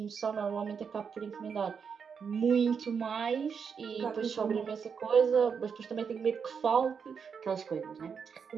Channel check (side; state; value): left; quieter; 6.4 dB